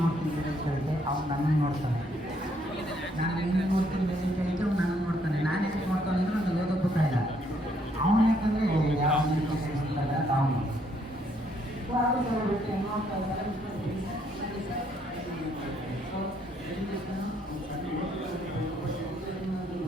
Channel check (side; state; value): both; normal; correlation 0.70